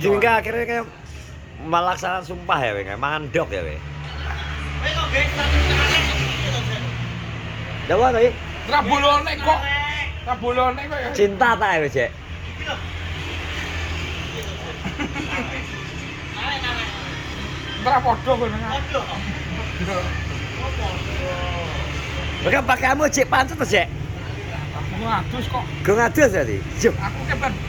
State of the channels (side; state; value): both; identical; correlation 1.00